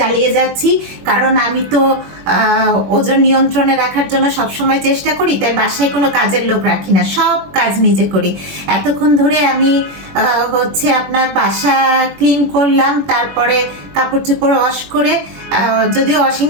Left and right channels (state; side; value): late; left; 21 ms